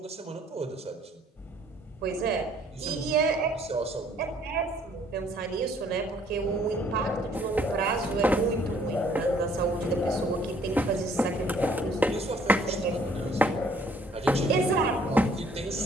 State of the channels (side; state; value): both; normal; correlation 0.61